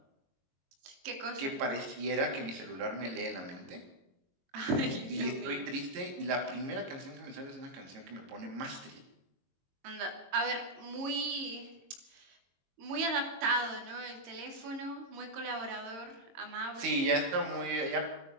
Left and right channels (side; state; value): left; late; 22 ms